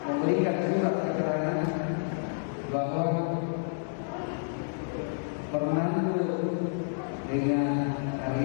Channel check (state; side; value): silent; right; 58 dB below the other